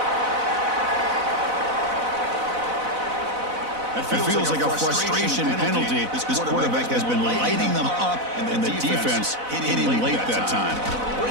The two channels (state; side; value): late; left; 4.0 ms